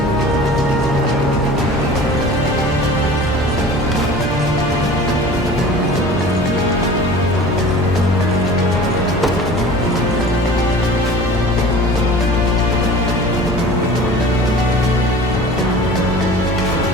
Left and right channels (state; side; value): normal; both; correlation 0.41